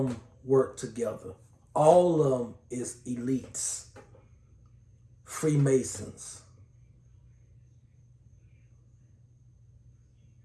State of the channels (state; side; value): identical; both; correlation 1.00